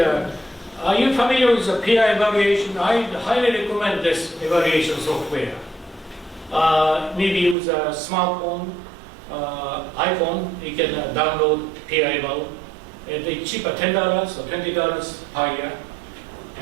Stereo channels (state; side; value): drops out; left; at 7.6 s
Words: you familiar with the peer evaluation? I highly recommend this evaluation software. Maybe use a smartphone, iPhone, you can download peer eval. It's cheaper, $10 or $20 per year.